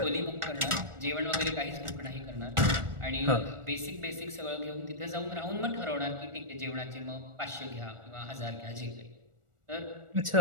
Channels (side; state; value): left; late; 1.4 ms